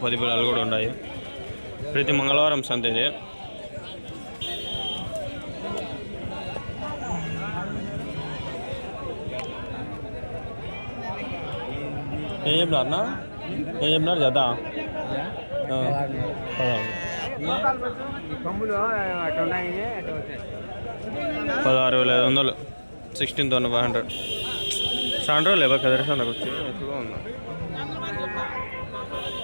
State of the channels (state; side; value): inverted; both; correlation -1.00